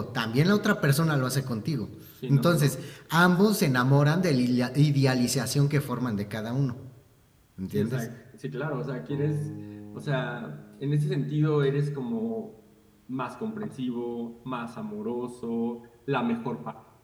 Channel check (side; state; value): both; identical; correlation 1.00